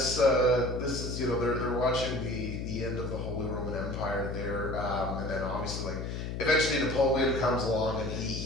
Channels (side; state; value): left; noise; hum, 5 dB below the sound